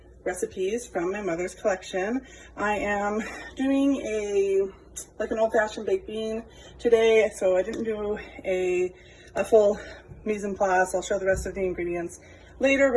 recipes from my mother's collection. I am doing an old-fashioned baked bean today, so I didn't do a full mise en place. I'll show the rest of the ingredients later,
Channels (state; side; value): identical; both; correlation 1.00